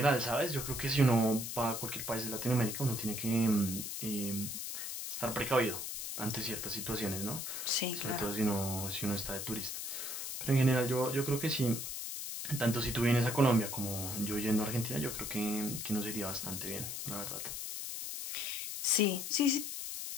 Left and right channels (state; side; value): noise; left; hiss, 5 dB below the sound